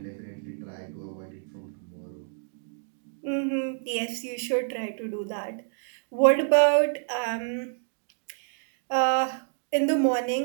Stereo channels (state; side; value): silent; left; digital silence